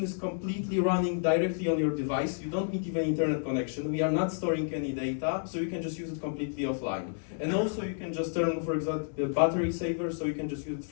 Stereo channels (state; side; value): silent; right; digital silence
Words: is completely running directly on your device. You don't need even internet connection. We are not storing any data, so you can just use it completely offline. And also you can just turn, for example, the battery saver, so you can just use it